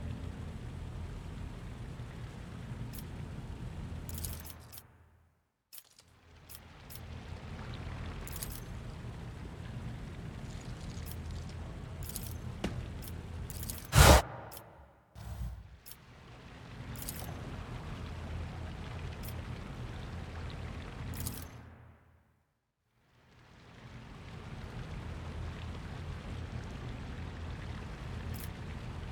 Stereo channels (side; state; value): both; identical; correlation 1.00